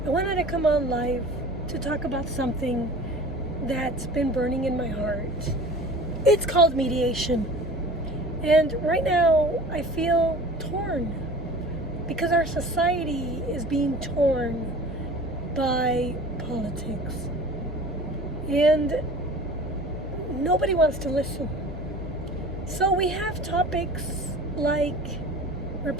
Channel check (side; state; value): both; normal; correlation 0.41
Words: I wanted to come on live to talk about something that's been burning in my heart. It's called mediation. And right now I feel torn because our society is being torn by politics. And nobody wants to listen. So we have topics like